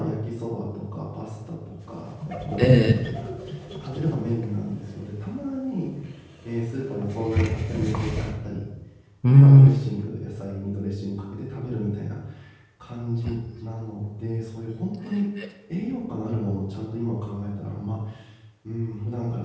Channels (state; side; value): identical; both; correlation 1.00